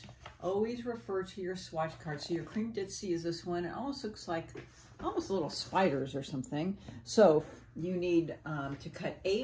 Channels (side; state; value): both; identical; correlation 1.00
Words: always refer to your swatch card. So your cream ditzy is this one. It almost looks like little spiders or something. So you need to cut